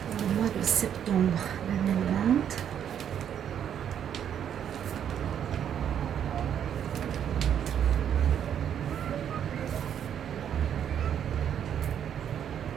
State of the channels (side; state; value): left; quieter; 9.1 dB